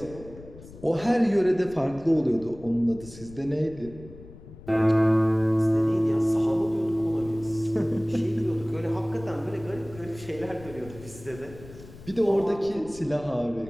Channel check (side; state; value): left; noise; rumble, 18 dB below the sound